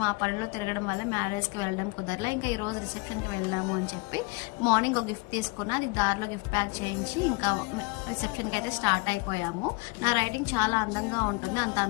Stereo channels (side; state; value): right; quieter; 27.2 dB